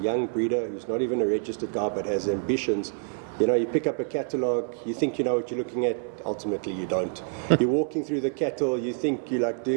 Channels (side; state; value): left; silent; 60 dB below the other